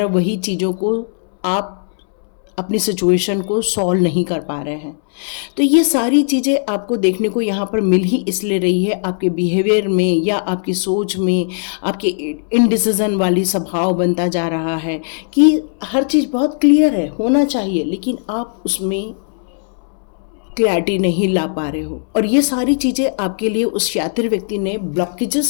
वही चीज़ों को आप अपनी सिचुएशन को सॉल्व नहीं कर पा रहे हैं। तो ये सारी चीज़ें आपको देखने को यहाँ पर मिल ही इसलिए रही है, आपके बिहेवियर में या आपकी सोच में आपके इनडिसीजन वाली स्वभाव बनता जा रहा है कि हर चीज़ बहुत क्लियर है, होना चाहिए, लेकिन आप उसमें क्लैरिटी नहीं ला पा रहे हो। और ये सारी चीज़ें आपके लिए उस शातिर व्यक्ति ने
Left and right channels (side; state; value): right; silent; 68 dB below the other